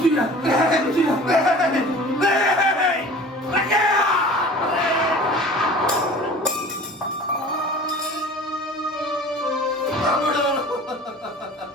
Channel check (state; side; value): normal; both; correlation 0.43